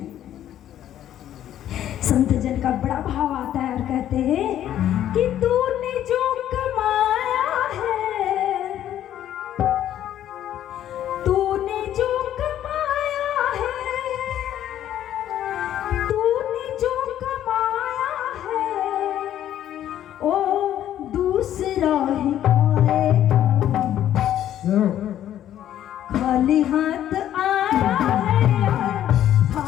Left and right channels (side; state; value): right; quieter; 11.4 dB